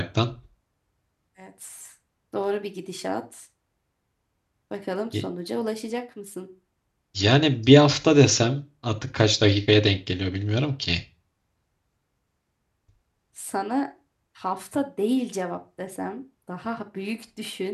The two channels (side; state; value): both; identical; correlation 1.00